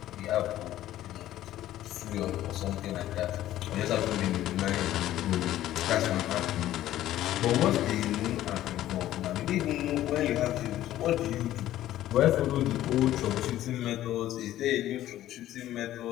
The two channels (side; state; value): right; quieter; 13.5 dB